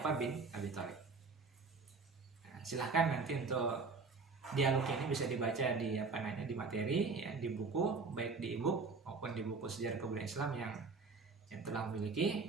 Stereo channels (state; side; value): quieter; left; 4.4 dB